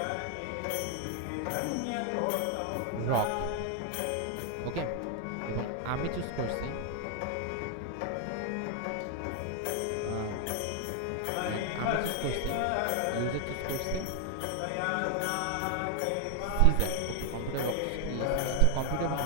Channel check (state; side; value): different; both; correlation 0.00